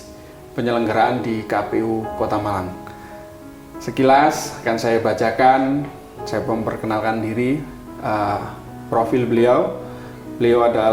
Penyelenggaraan di KPU Kota Malang. Sekilas akan saya bacakan, saya memperkenalkan diri, profil beliau. Beliau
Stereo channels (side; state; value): both; identical; correlation 1.00